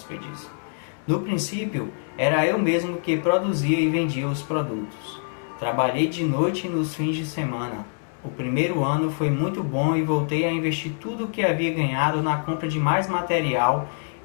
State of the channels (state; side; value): silent; right; 62 dB below the other